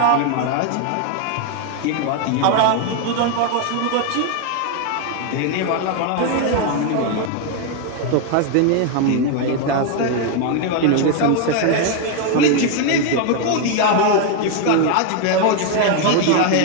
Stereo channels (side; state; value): both; different; correlation 0.01